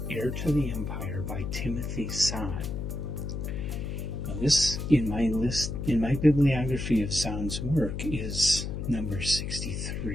Heir to the Empire by Timothy Zahn. Now this, in my bibliography of Zahn's work, is number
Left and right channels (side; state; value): left; noise; hum, 4 dB below the sound